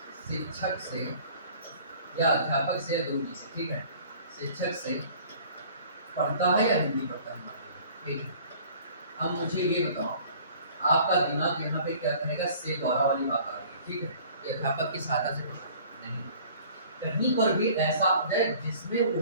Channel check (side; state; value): both; inverted; correlation -0.50